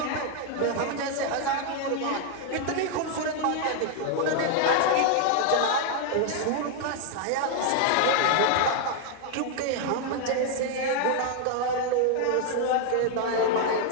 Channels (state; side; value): different; both; correlation 0.00